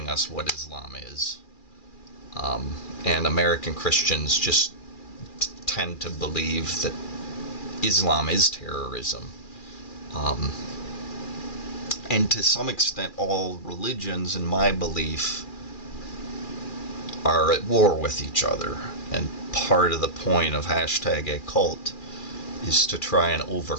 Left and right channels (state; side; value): late; right; 2.4 ms